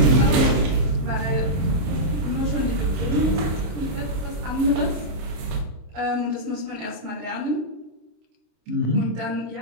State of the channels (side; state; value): left; late; 26 ms